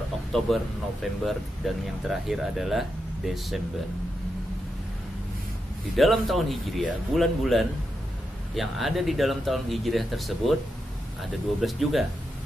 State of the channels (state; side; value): normal; both; correlation 0.86